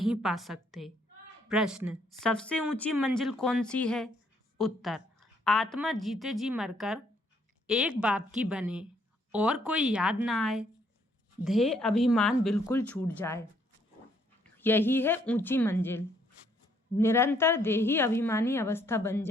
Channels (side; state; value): both; normal; correlation 0.68